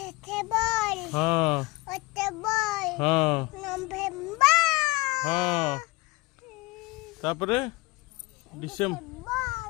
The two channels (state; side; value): quieter; right; 22.0 dB